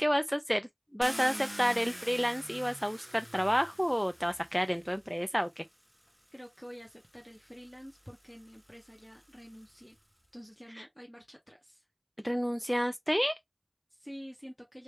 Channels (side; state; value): both; identical; correlation 1.00